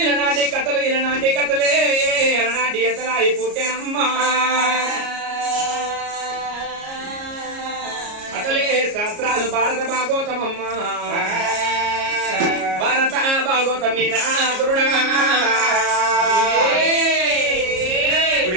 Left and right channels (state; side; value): late; left; 33 ms